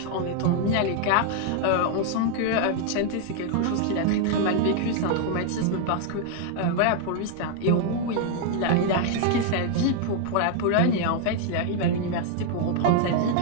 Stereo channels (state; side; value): different; both; correlation 0.00